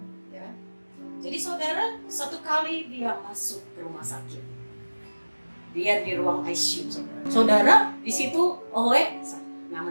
ya. Jadi saudara, satu kali dia masuk ke rumah sakit, dia di ruang ICU. Saudara, di situ owe,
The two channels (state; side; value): inverted; both; correlation -1.00